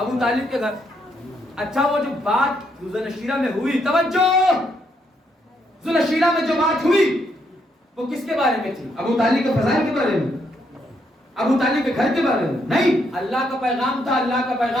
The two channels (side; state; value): both; normal; correlation 0.75